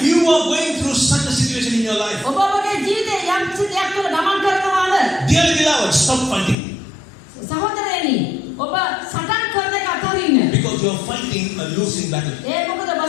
you are going through such a situation in your life, ඔබ ඔබගේ ජීවිතේ යම් කිසි දෙයක් තුළ ගමන් කරනවාද? dear beloved, stop fighting. සහෝදරයනි ඔබ සටන් කරන එක අතරින්න. Because you are fighting a losing battle. ඒ මොකද ඔබ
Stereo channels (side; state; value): right; drops out; at 6.6 s